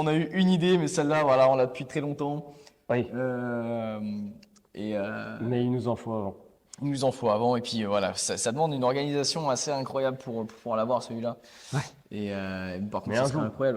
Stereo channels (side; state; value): both; identical; correlation 1.00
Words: a eu une idée, mais celle-là, voilà, on l'a depuis très longtemps. oui, mais il nous en faut avant. Il nous en faut avant, et puis voilà, ça demande une organisation assez incroyable pour pouvoir l'avoir, celui-là. Ouais. Et par contre, Mais ça un serait jour.